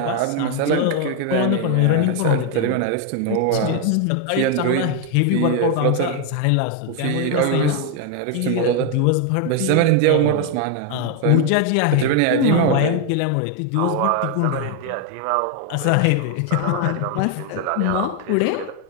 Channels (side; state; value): both; different; correlation 0.01